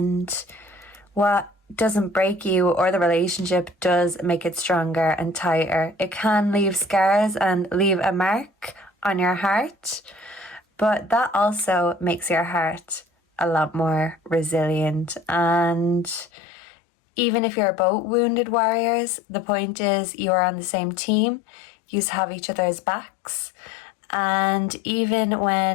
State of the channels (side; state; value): right; drops out; at 16.3 s